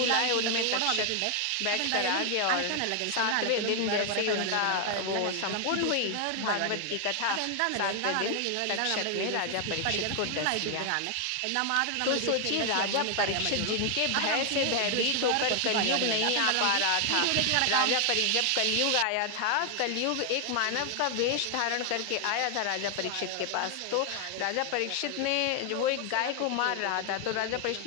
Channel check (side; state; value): both; different; correlation 0.00